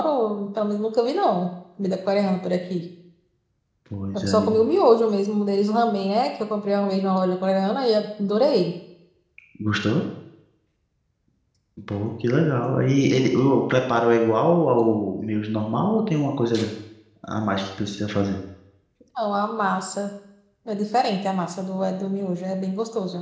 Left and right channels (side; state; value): both; identical; correlation 1.00